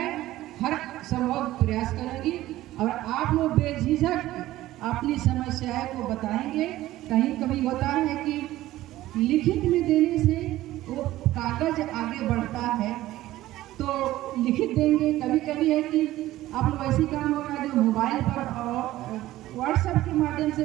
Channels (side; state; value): left; quieter; 15.6 dB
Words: हर संभव प्रयास करूँगी और आप लोग बेझिझक अपनी समस्याएं को बताएंगे। कहीं कभी होता है कि लिखित में देने से वो कागज आगे बढ़ता है, तो लिखित देंगे। कभी कभी है कि आप लोग ऐसी काम होगा जो मोबाइल पर और व्हाट्सएप के माध्यम से